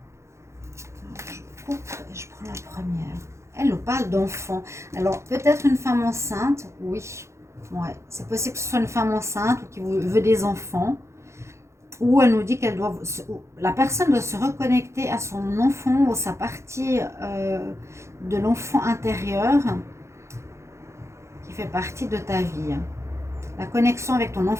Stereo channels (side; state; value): left; late; 0.14 ms